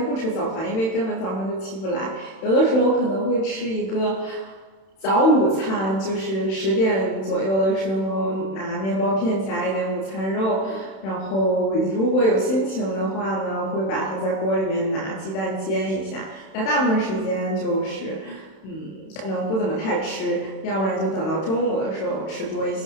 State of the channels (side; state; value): right; late; 31 ms